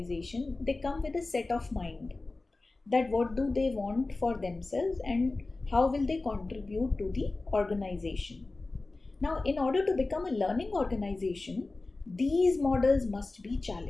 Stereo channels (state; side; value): quieter; right; 3.3 dB